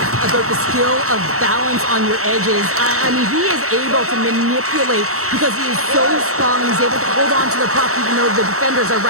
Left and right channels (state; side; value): late; left; 0.64 ms